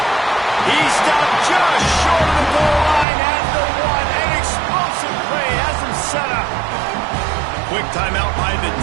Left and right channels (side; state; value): left; drops out; at 3.1 s